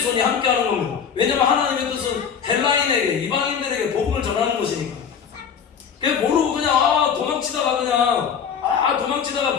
함께하는 겁니다. 왜냐면 하나님의 뜻은 헬라인에게 이방인들에게 복음을 전하는 것이니까. 그게 모르고 그냥 도망치다가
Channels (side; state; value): right; quieter; 7.3 dB